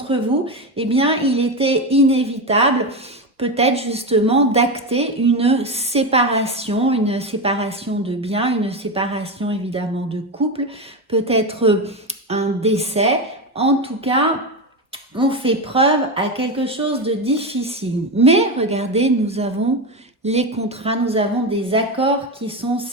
vous, eh bien il était inévitable peut-être justement d'acter une séparation de biens, une séparation évidemment de couple, peut-être un décès. En tout cas, on fait preuve à quelque chose de difficile. Mais regardez, nous avons les contrats, nous avons des accords qui sont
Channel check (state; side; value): normal; both; correlation 0.15